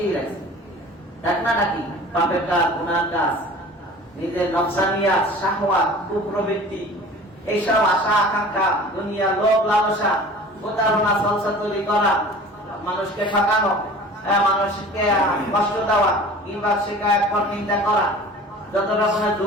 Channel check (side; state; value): both; normal; correlation 0.43